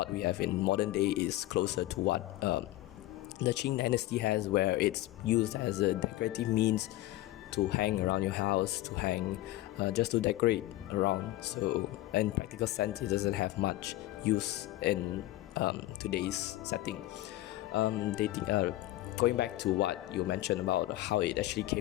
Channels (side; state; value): right; quieter; 16.3 dB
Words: we have in modern day is closer to what the Qing dynasty has, where it's used as a decorative means to hang around your house, to hang just to decorate around. So in practical sense, it doesn't have much use in today's setting. Going back to what you mentioned about how it actually